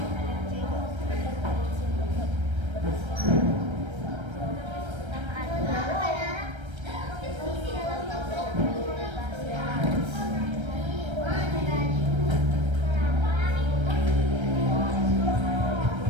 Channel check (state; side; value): late; left; 1.3 ms